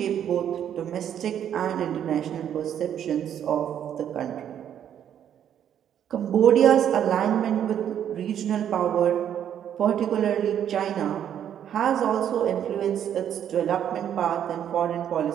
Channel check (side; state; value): left; quieter; 9.6 dB